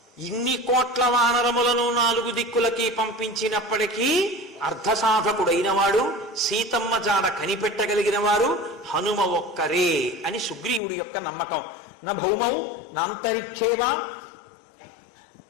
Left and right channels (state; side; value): drops out; right; at 10.8 s